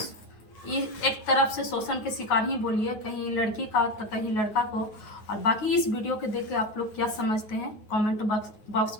एक तरफ से शोषण के शिकार ही बोलिए, कहीं लड़की का तो कहीं लड़का को। और बाकी इस वीडियो के देख के आप लोग क्या समझते हैं, कमेंट बॉक्स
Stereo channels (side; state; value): right; late; 9.5 ms